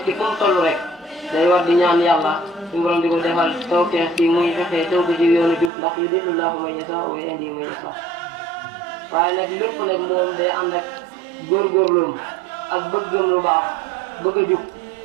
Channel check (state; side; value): drops out; left; at 5.7 s